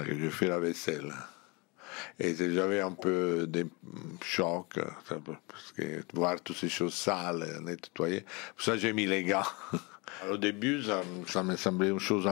que je fais la vaisselle. Et j'avais un peu de choc, parce que voir toutes ces choses sales, nettoyer. Pour ça, j'ai mis les gants. Au début, ça me semblait une chose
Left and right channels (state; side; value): quieter; right; 28.2 dB